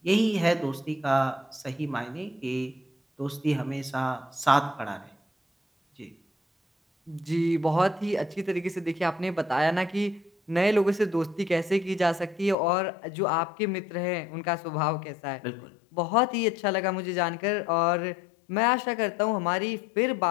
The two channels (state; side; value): drops out; right; at 12.6 s